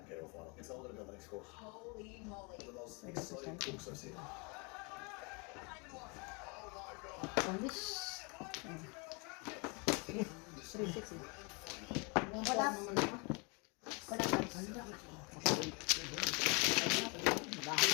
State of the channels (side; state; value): right; quieter; 31.8 dB